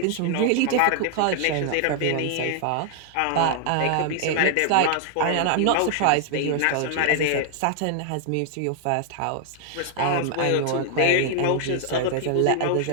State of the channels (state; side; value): different; both; correlation 0.00